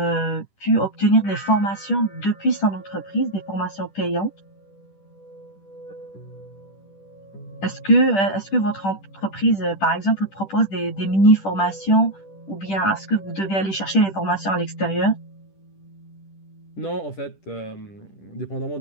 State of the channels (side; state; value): right; late; 10 ms